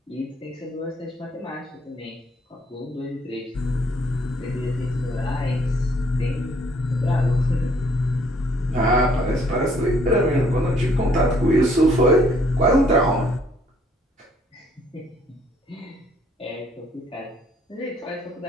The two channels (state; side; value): normal; both; correlation 0.64